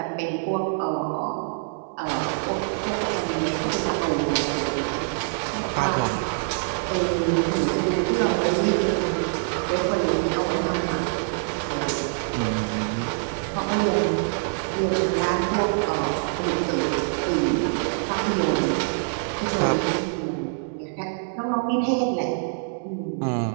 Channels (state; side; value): silent; left; 62 dB below the other